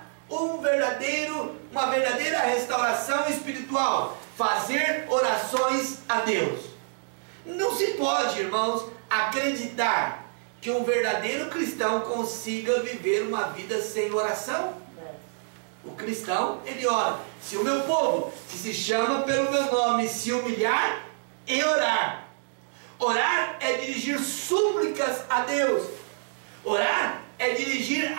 uma verdadeira restauração espiritual: fazer orações a Deus. Não se pode, irmãos, acreditar que um verdadeiro cristão consiga viver uma vida sem oração. O cristão, ele ora. Se o meu povo, que se chama pelo meu nome, se humilhar e orar. Orar é dirigir súplicas a Deus. Orar é dirigir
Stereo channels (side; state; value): left; silent; digital silence